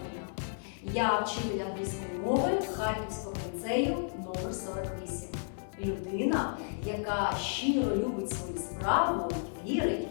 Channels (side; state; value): right; silent; digital silence